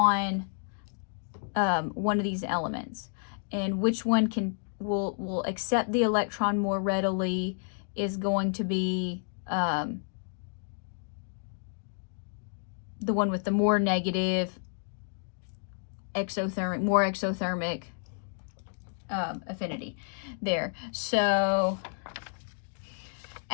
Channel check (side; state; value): right; silent; digital silence